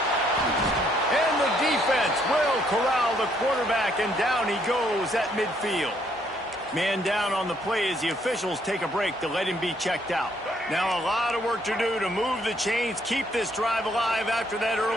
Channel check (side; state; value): both; normal; correlation 0.69